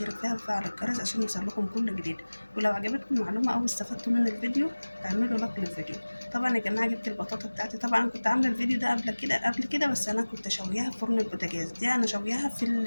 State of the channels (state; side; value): inverted; both; correlation -1.00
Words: فيها ويفعل الجرس عشان يوصلكم كل جديد. ولو عجبتكم المعلومه او استفدتوا من الفيديو اعملوا لايك للفيديو. طبعا يا جماعه جبت البطاطا بتاعتي. طبعا انا كنت عامله الفيديو ده قبل كده بس انا كنت شوياها في فرن البوتاجاز. دي انا شوياها